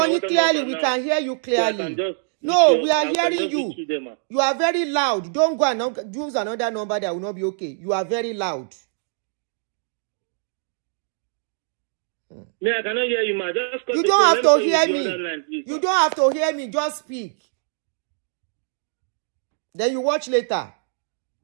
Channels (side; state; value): left; silent; digital silence